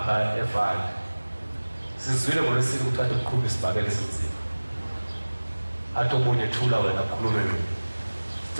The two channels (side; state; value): both; inverted; correlation -1.00